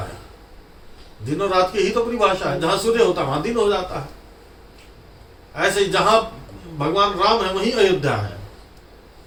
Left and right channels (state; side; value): identical; both; correlation 1.00